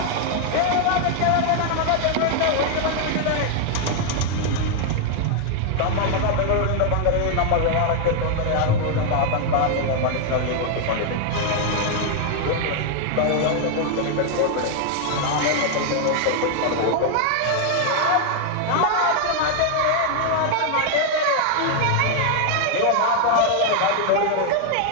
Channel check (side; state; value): both; different; correlation 0.00